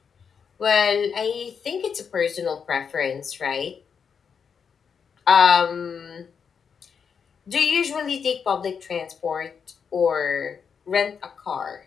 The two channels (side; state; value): right; quieter; 6.5 dB